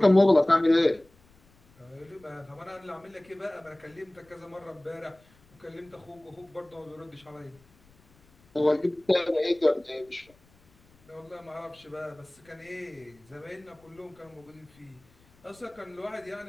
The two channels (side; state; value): left; noise; rumble, 30 dB below the sound